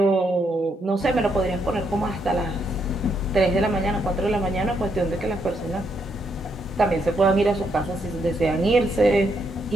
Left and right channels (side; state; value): both; normal; correlation 0.77